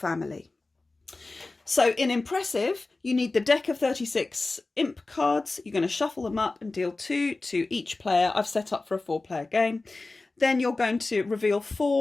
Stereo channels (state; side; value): quieter; right; 3.4 dB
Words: So in IMPassive, you need the deck of 36 imp cards. You're going to shuffle them up and deal 2 to each player. I've set up for a 4-player game. Then you're going to reveal